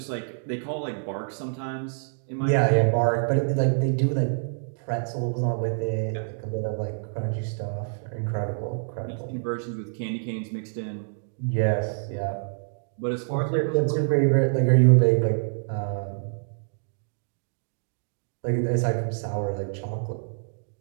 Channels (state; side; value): silent; left; digital silence